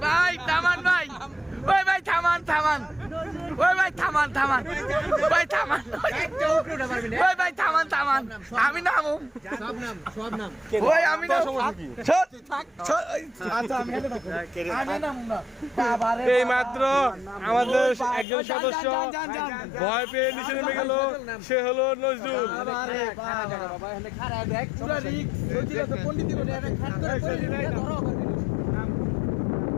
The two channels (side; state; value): right; drops out; at 18.2 s